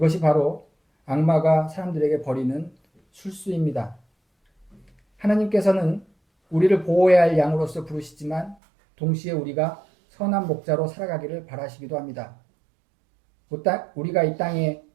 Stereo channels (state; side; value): drops out; left; at 8.6 s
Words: 바로 악마가 사람들에게 벌이는 술수입니다. 하나님께서는 우리를 보호해야 할 양으로서 부르시지만 동시에 우리가 선한 목자로 살아가기를 바라시기도 합니다. 우리가 이 땅에